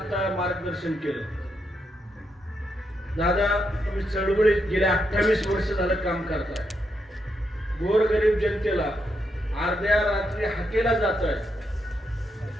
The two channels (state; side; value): normal; both; correlation 0.81